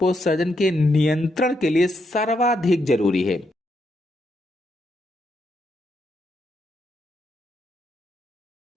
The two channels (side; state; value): both; normal; correlation 0.79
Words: के नियंत्रण के लिए सर्वाधिक जरूरी है?